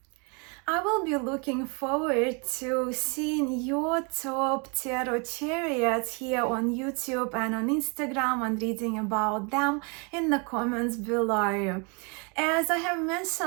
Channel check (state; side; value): quieter; left; 33.4 dB